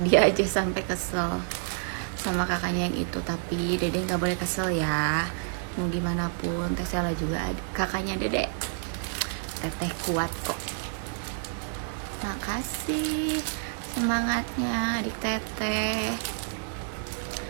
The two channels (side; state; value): left; silent; digital silence